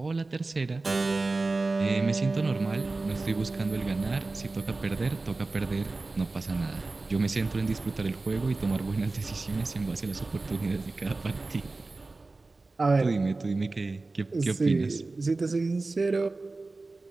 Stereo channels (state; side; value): quieter; left; 3.4 dB